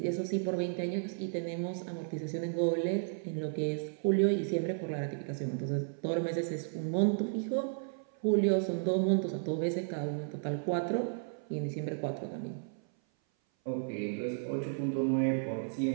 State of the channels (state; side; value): silent; left; 55 dB below the other